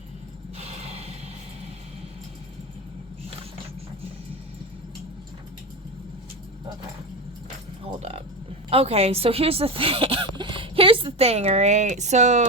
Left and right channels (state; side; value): normal; both; correlation 0.19